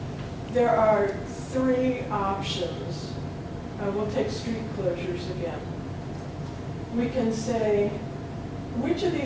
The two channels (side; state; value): both; identical; correlation 1.00